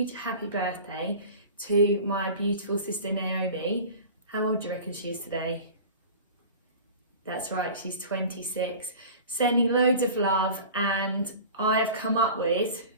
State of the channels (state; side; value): inverted; both; correlation -0.38